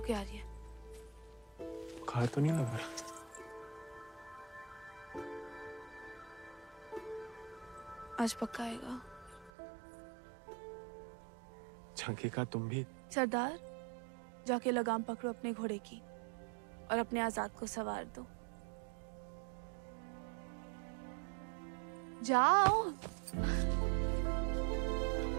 के आ रही है। बुखार तो नहीं लग रहा? आज पक्का आएगा। झंकी का तुम भी? सरदार, जाके लगाम पकड़ो अपने घोड़े की और अपने आजाद को सवार दो। जाओ।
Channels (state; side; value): drops out; left; at 9.5 s